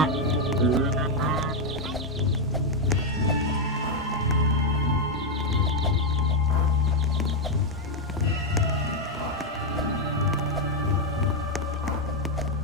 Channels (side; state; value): both; normal; correlation 0.02